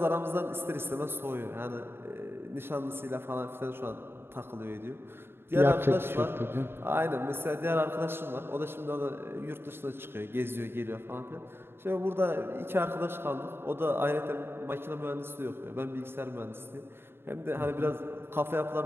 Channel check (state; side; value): late; left; 0.11 ms